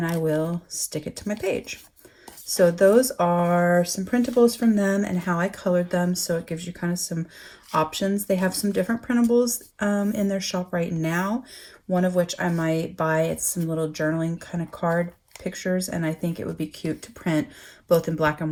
I will stick it to my page. So those are some printables from them and how I colored them. So it gives you kind of some options. They have some different printables in their shop right now, one of which I might buy. It's some little journaling kind of card pictures, and I think it would be cute to print both in black and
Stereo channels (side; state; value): both; identical; correlation 1.00